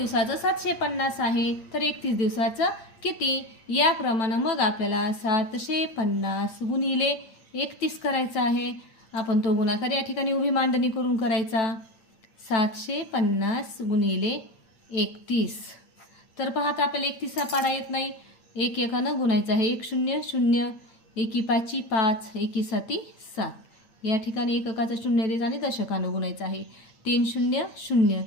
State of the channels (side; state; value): right; late; 8.8 ms